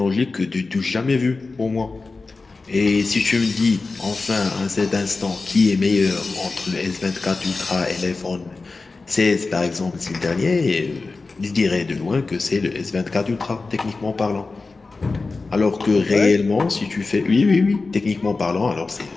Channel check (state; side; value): quieter; right; 3.8 dB